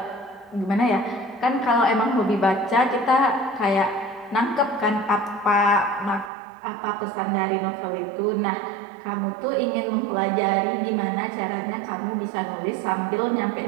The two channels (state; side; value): drops out; left; at 6.3 s